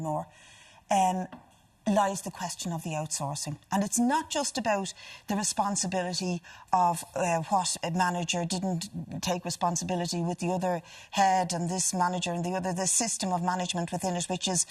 lies the question of the outsourcing. And it's not just about the responsibility of what a manager didn't take responsibility with the other head and this manager and the other, the system of management within it, which is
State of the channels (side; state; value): both; identical; correlation 1.00